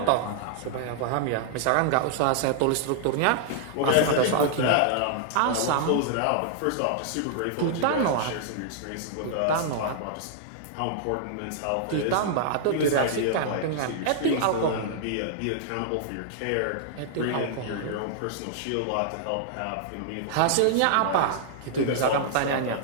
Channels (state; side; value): different; both; correlation -0.01